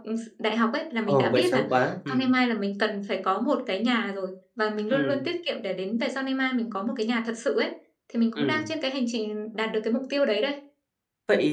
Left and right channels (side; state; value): both; identical; correlation 1.00